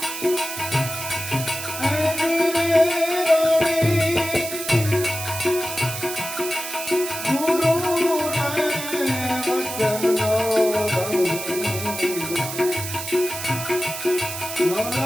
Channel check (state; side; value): noise; right; hiss, 7 dB below the sound